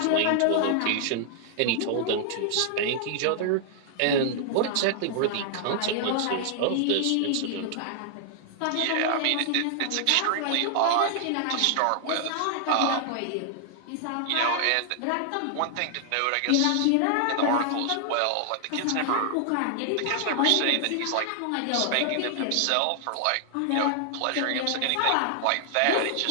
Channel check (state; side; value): different; both; correlation 0.00